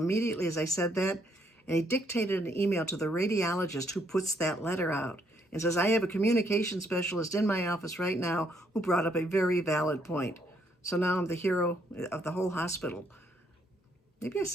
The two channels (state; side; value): normal; both; correlation 0.71